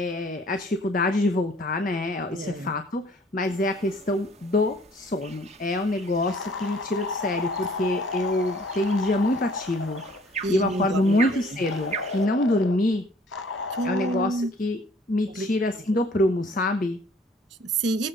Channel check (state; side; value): normal; both; correlation 0.56